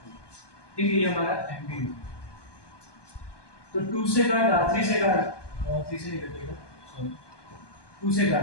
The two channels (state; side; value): late; right; 1.2 ms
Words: ठीक है ये हमारा एमबी तो 2 से काट 3 से काट 3 से नहीं कटेगा सॉरी 2 से